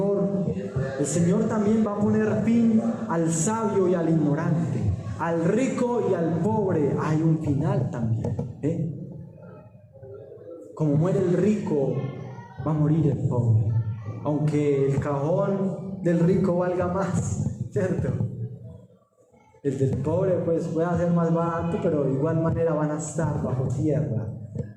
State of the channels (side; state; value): both; identical; correlation 1.00